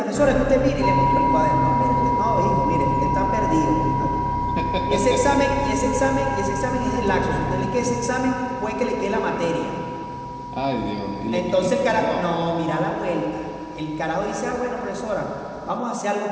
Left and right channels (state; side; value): identical; both; correlation 1.00